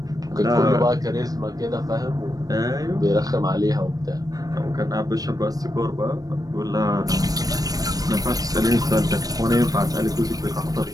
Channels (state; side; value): late; left; 0.18 ms